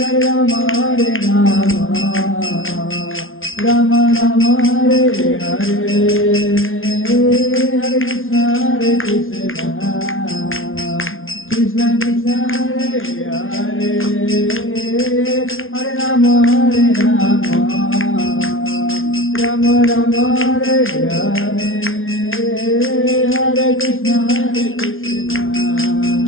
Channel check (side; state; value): right; late; 0.59 ms